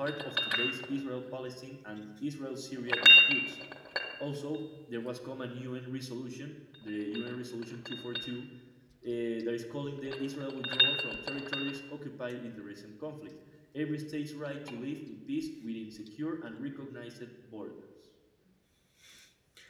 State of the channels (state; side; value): identical; both; correlation 1.00